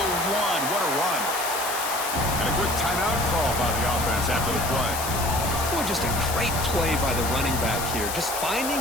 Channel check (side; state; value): left; noise; hiss, 5 dB below the sound